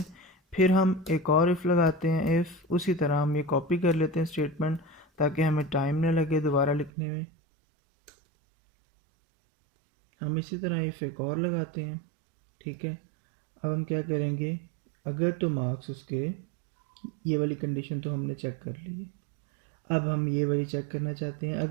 फिर हम एक और इफ़ लगाते हैं, इफ़ उसी तरह हम ये कॉपी कर लेते हैं स्टेटमेंट, ताकि हमें टाइम न लगे दोबारा लिखने में। हम इसी तरह इफ़ एक और लगाते हैं। ठीक है। अब हम क्या करेंगे, अगर तो मार्क्स उसके, ये वाली कंडीशन तो हमने चेक कर ली है, अब हम ये वाली चेक करना चाहते हैं,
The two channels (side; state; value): left; drops out; at 6.9 s